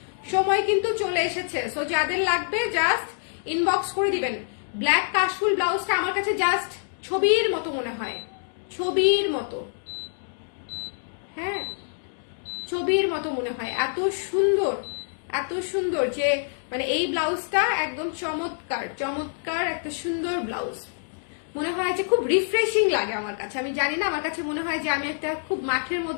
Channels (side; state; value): right; silent; digital silence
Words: সময় কিন্তু চলে এসেছে। সো যাদের লাগবে জাস্ট ইনবক্স করে দিবেন। ব্ল্যাক কাশফুল ব্লাউজটা আমার কাছে জাস্ট ছবির মতো মনে হয়, ছবির মতো, হ্যাঁ ছবির মতো মনে হয়, এত সুন্দর, এত সুন্দর যে মানে এই ব্লাউজটা একদম চমৎকার, চমৎকার একটা সুন্দর ব্লাউজ। মনে হয় যে খুব রিফ্রেশিং লাগে আমার কাছে, আমি জানি না, আমার কাছে মনে হয় যে আমি একটা খুব মাঠের